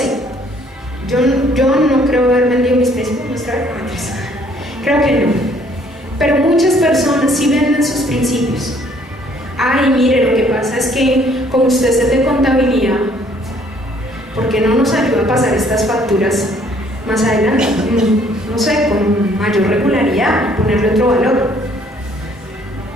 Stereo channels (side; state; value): both; normal; correlation 0.62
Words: Yo no creo haber vendido mis principios. Creo que no. Pero muchas personas sí venden sus principios. Ay, mire, lo que pasa es que como usted es de contabilidad, ¿por qué no nos ayuda a pasar estas facturas más adelante? No sé, con mayor regularidad, ponerle otro valor.